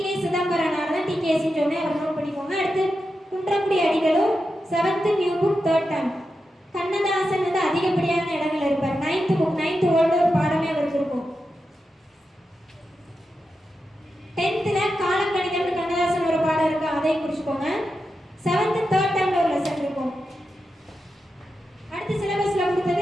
Chidambaranar தான் டிகேசின்னு சொன்னேன், அவர் நோட் பண்ணிக்கோங்க. அடுத்து குன்றக்குடி அடிகளும் 7th new book 3rd term. Kannadasan வந்து அதிகப்படியான இடங்கள் இருப்பார். 9th புக் 9th ஓல்டு ஒரு பாடமே அவருக்கு இருக்கும். 10th காலக்கணிதம் கண்ணதாசன் ஒரு பாடம் இருக்கு, அதையும் குறிச்சுக்கோங்க. 7th 3rd termல ஒரு லெசன் இருக்கும். அடுத்து சிலபஸ்ல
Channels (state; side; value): normal; both; correlation 0.89